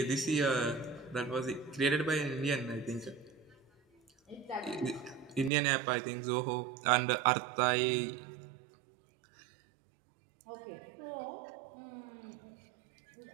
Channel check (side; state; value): left; drops out; at 5.5 s